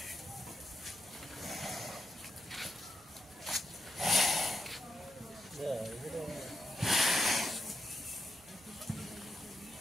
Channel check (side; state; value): both; normal; correlation 0.85